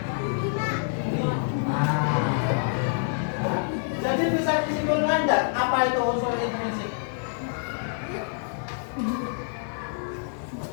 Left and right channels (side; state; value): right; silent; 60 dB below the other